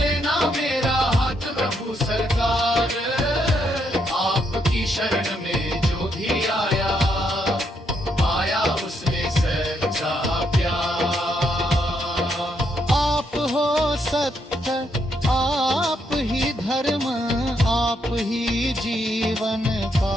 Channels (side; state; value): both; normal; correlation 0.76